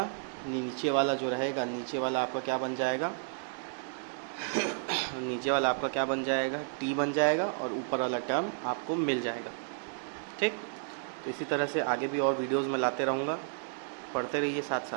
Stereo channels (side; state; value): left; silent; digital silence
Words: नीचे वाला जो रहेगा, नीचे वाला आपका क्या बन जाएगा नीचे वाला आपका क्या बन जाएगा, t बन जाएगा, और ऊपर वाला टर्म आपको मिल जाएगा, ठीक। तो इसी तरह से आगे भी और वीडियोज़ में लाते रहूँगा, पढ़ते रहिए साथ